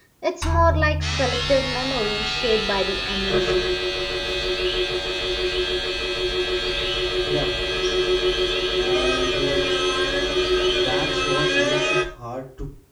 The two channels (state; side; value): identical; both; correlation 1.00